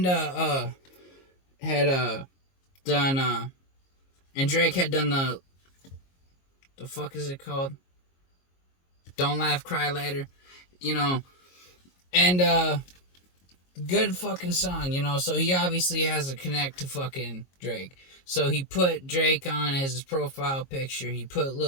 had done, and Drake had done the fuck is it called? Don't Laugh, Cry Later, you know, and, good fucking song, you know, so he obviously has a connect to fucking Drake. So he put Drake on as his profile picture. He put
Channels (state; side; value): late; right; 22 ms